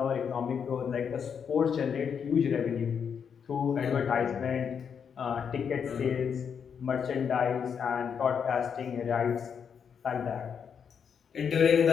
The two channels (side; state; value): right; quieter; 7.1 dB